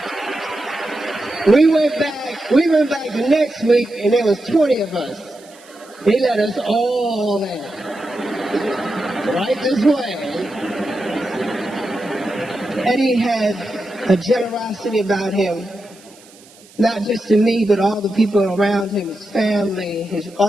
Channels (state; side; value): noise; right; hiss, 25 dB below the sound